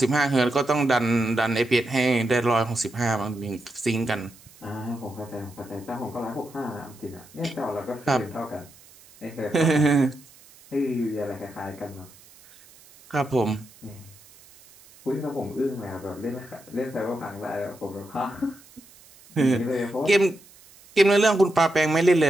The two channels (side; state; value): right; noise; hiss, 25 dB below the sound